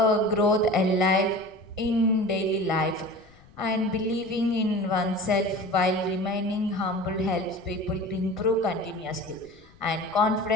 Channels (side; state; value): left; noise; rumble, 27 dB below the sound